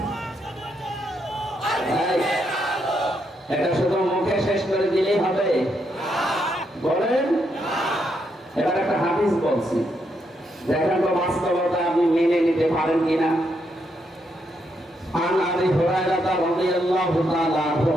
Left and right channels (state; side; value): normal; both; correlation 0.79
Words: এটা শুধু মুখে শেষ করে দিলেই হবে বলেন? এবার একটা হাদিস বলছি, দেখেন তো বাস্তবতা আপনি মেনে নিতে পারেন কিনা। عن أبي هريرة رضي الله تعالى عنه